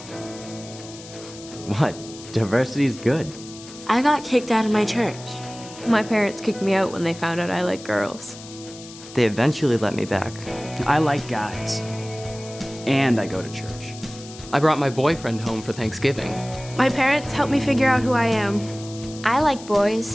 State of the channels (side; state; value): left; noise; hiss, 17 dB below the sound